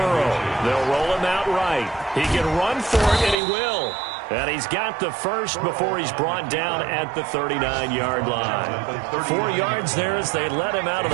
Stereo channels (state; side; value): drops out; left; at 3.4 s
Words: They'll roll him out right. He can run for it, and he will. And he's got the first before he's brought down at the 39-yard line. 4 yards there as they let him out of